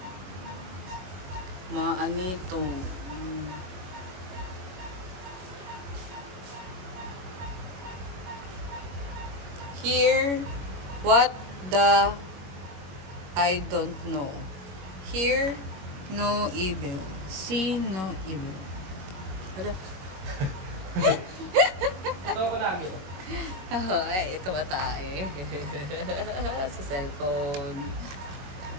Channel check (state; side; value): late; left; 21 ms